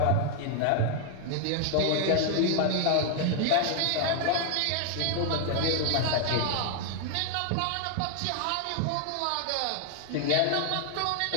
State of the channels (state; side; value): different; both; correlation 0.00